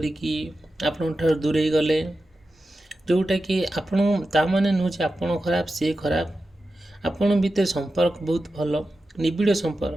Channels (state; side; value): normal; both; correlation 0.92